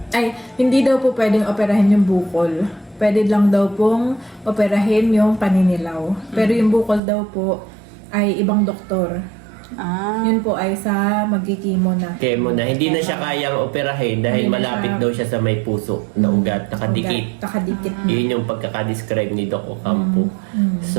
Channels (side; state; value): left; drops out; at 7.0 s